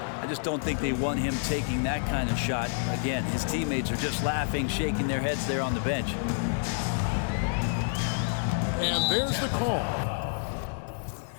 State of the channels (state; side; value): silent; right; digital silence